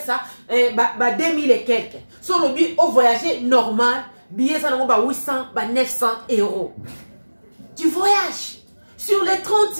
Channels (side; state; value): both; inverted; correlation -1.00